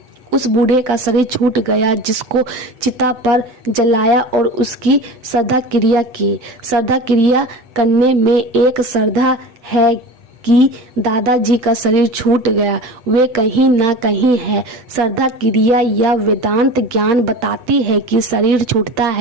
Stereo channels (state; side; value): late; left; 8.0 ms